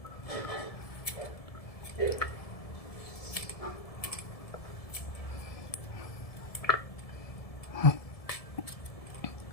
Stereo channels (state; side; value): late; right; 1.7 ms